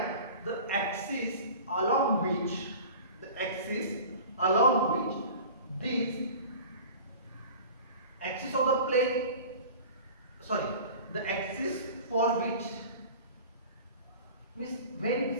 the axis along which this axis of the plane, the axis for which means when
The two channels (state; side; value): inverted; both; correlation -0.40